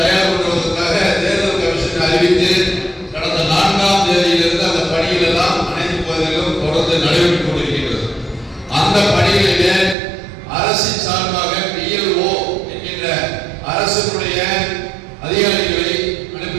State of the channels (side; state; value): left; drops out; at 10.0 s